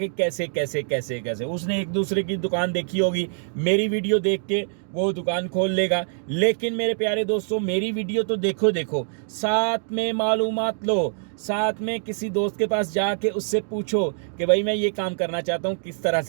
कैसे कैसे कैसे कैसे। उसने एक दूसरे की दुकान देखी होगी, मेरी वीडियो देख के वो दुकान खोल लेगा। लेकिन मेरे प्यारे दोस्तों, मेरी वीडियो तो देखो देखो, साथ में मालूमात लो, साथ में किसी दोस्त के पास जाके उससे पूछो कि भाई मैं ये काम करना चाहता हूँ, किस तरह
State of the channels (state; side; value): silent; left; digital silence